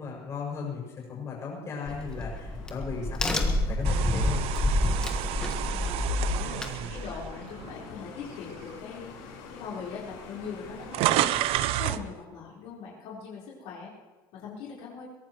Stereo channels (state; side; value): normal; both; correlation 0.46